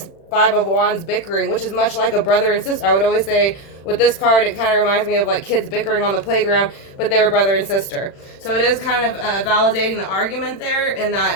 Five of Wands bickering, which is much like a brother and sister. I would always say with this card, it kind of reminds me of like kids bickering on the playground, but they were brother and sister. So it is kind of validating the argument there, in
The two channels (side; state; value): right; late; 36 ms